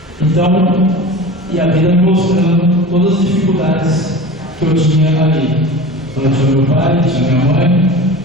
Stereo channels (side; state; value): both; normal; correlation 0.35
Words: Então, e a vida me mostrando todas as dificuldades que eu tinha ali. Então, eu tinha meu pai, tinha minha mãe,